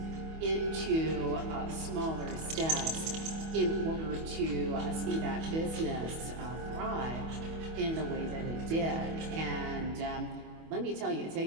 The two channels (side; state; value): left; late; 25 ms